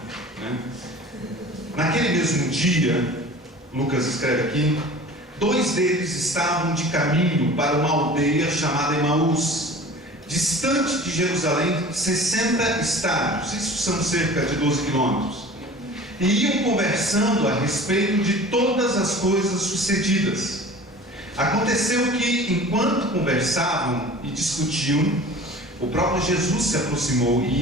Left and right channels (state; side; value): normal; both; correlation 0.42